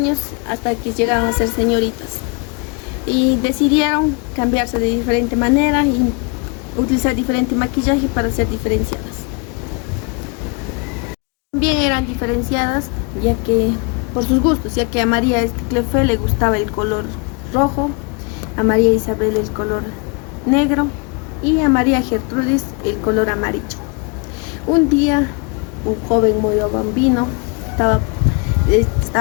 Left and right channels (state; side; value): quieter; right; 32.9 dB